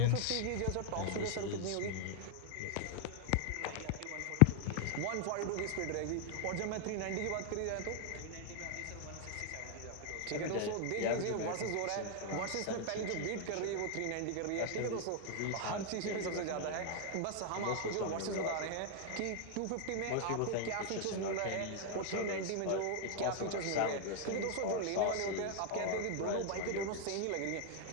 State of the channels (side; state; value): both; different; correlation 0.00